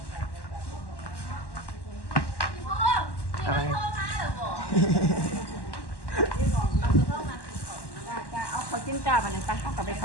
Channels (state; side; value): late; right; 1.1 ms